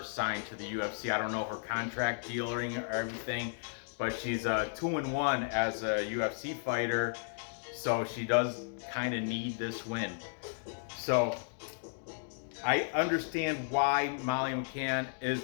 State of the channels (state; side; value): silent; right; digital silence